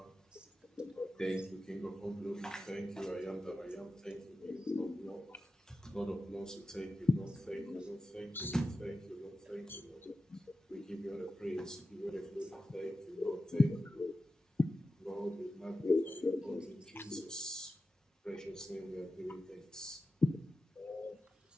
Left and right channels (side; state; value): both; normal; correlation 0.92